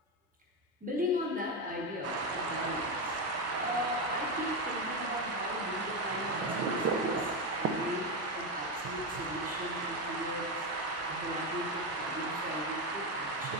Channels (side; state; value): both; normal; correlation 0.11